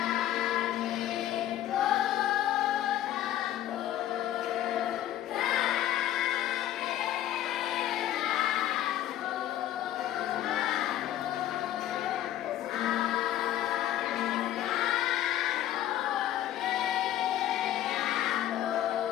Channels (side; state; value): right; quieter; 12.6 dB